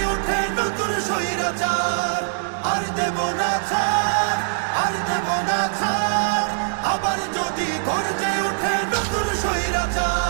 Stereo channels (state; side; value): silent; left; digital silence